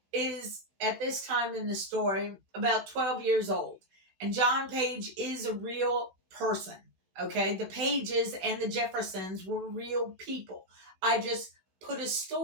is, at this time in the story, about 12 years old. And John Page is a real person, okay? The Pages and the Jeffersons were real people. I just put a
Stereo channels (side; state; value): left; late; 16 ms